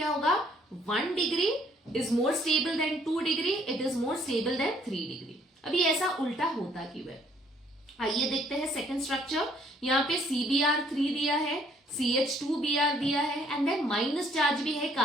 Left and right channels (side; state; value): both; normal; correlation 0.64